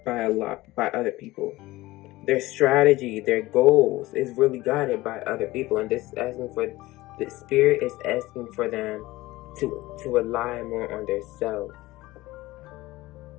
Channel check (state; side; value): quieter; right; 18.8 dB